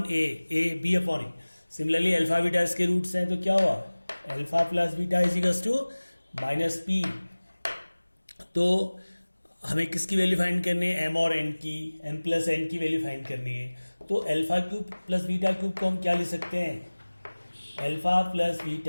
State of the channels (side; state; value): both; inverted; correlation -1.00